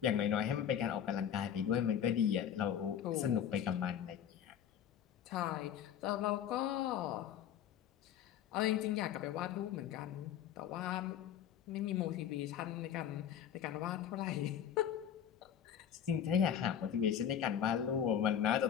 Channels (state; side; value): quieter; right; 9.3 dB